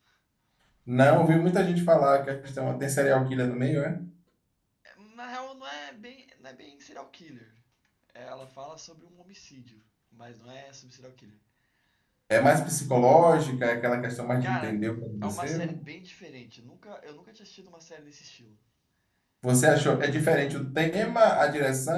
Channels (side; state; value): both; identical; correlation 1.00